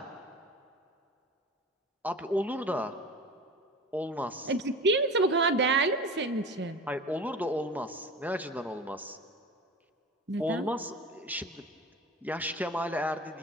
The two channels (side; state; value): both; normal; correlation 0.35